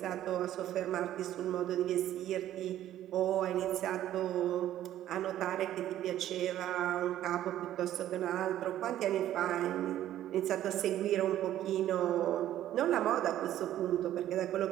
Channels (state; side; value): quieter; left; 12.5 dB